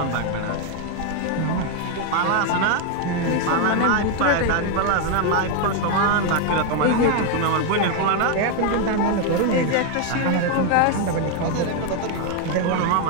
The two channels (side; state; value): both; different; correlation 0.01